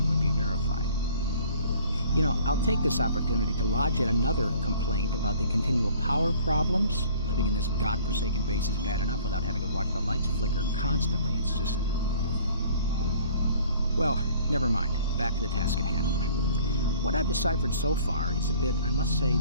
would be verified. You know, I'll take this opportunity to lodge yet another complaint about the continual power problems. Living in this godforsaken base is bad enough without having to watch the lights flicker constantly. It's just... Well, never mind. Back to the task at hand. What I've deciphered so far is a bit, I must say,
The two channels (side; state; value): both; inverted; correlation -0.53